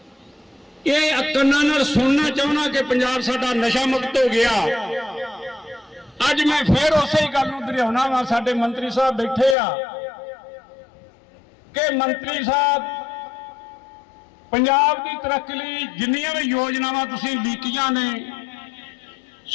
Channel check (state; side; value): drops out; right; at 9.6 s